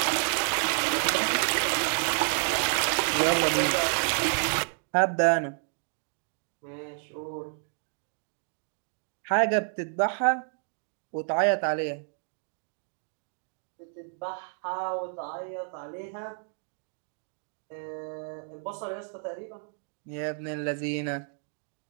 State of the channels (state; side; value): silent; left; 58 dB below the other